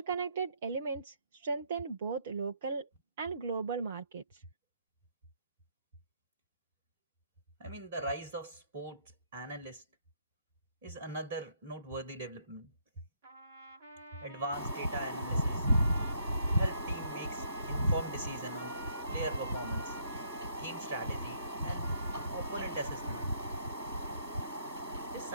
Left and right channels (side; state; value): both; inverted; correlation -0.70